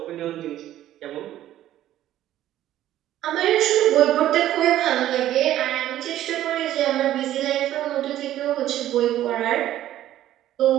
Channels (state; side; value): quieter; left; 13.0 dB